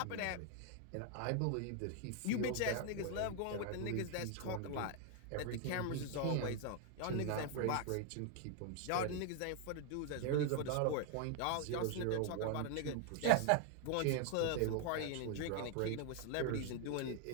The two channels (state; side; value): different; both; correlation 0.00